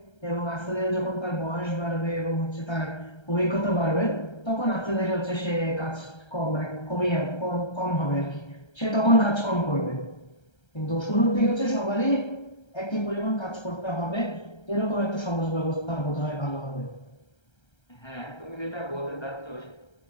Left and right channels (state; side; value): late; right; 1.3 ms